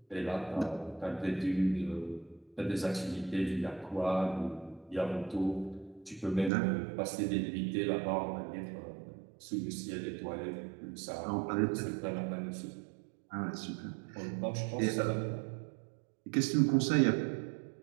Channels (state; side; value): drops out; left; at 6.5 s